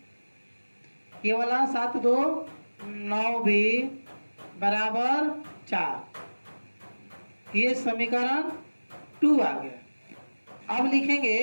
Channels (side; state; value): both; inverted; correlation -1.00